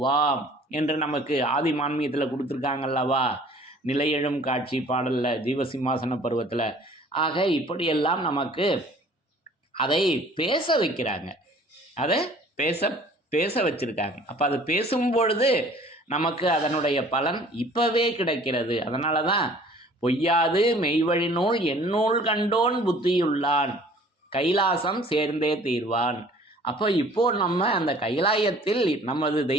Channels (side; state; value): both; normal; correlation 0.52